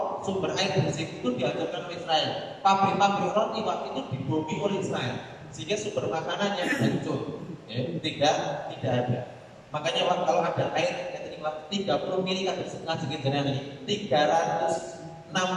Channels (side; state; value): both; identical; correlation 1.00